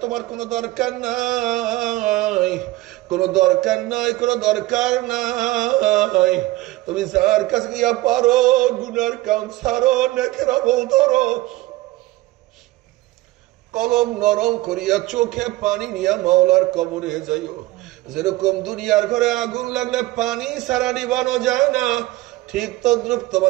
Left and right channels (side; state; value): left; quieter; 18.6 dB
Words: তোমার কোনো দরকার নাই, কোনো দরকার নাই, কোনো দরকার নাই। তুমি যার কাছে গিয়া পারো গুনার কাম ছাড়ো, নেকের আমল ধরো, কলম নরম করিয়া চোখে পানি নিয়া মাওলার কবরে যাইও। যেরকম দুনিয়ার ঘরে আগুন লাগলে পানি ছাড়া নিবানো যায় না, ঠিক তদ্রুপ